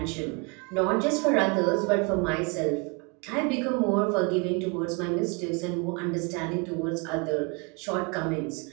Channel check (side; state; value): left; quieter; 31.4 dB